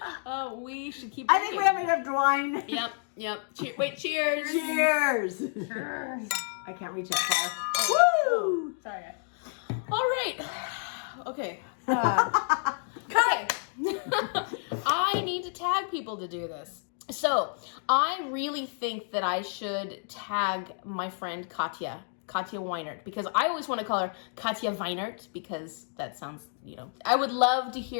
We should keep. I think we have enough wine. Yep. Wait, cheers. Cheers. Cheers. I can't reach that far. Woo! Sorry, guys. All right. Okay. Cut. I need to tag people to do this. So I really think that I should tag my friend Katya Weinert, because I always want to call her Katya Weinert because that sounds, I would love to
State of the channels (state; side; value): silent; right; 58 dB below the other